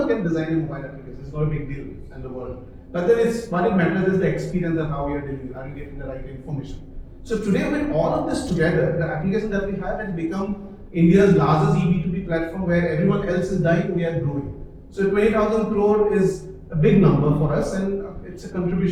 can design a mobile application. It's not a big deal in the world. But then what it matters is the experience of how we are dealing with, are you getting the right information. So today, with all of this together, the application that we have has become India's largest B2B platform where everyone else is dying, we are growing. So 20,000 crore is a big number for us, and it's a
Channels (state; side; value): identical; both; correlation 1.00